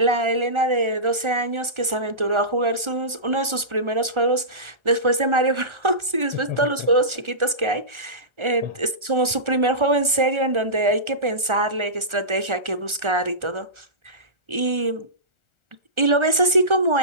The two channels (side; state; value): left; late; 1.4 ms